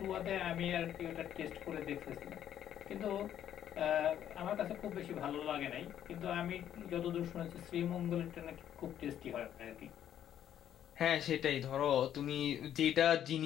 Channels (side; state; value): right; quieter; 10.5 dB